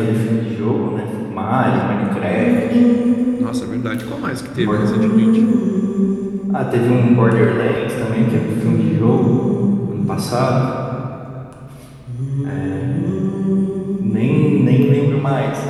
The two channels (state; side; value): identical; both; correlation 1.00